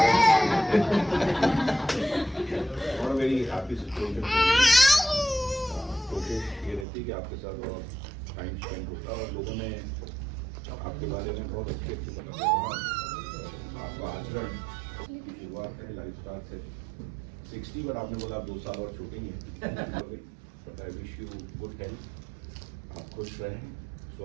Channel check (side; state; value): left; drops out; at 6.9 s